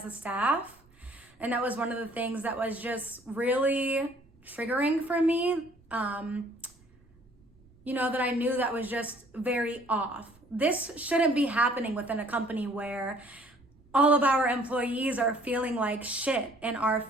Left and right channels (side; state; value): right; noise; rumble, 30 dB below the sound